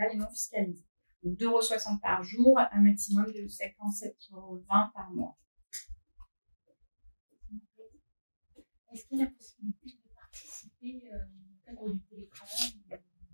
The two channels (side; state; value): both; inverted; correlation -1.00